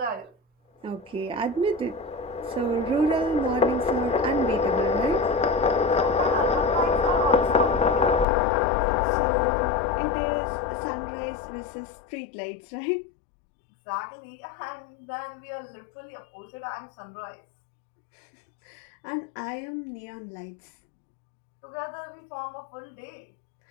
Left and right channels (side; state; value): right; drops out; at 8.2 s